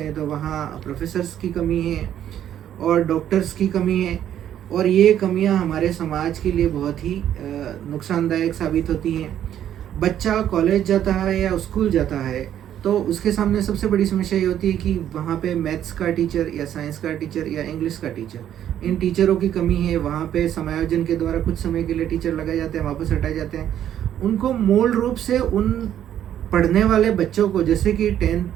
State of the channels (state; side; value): quieter; left; 10.6 dB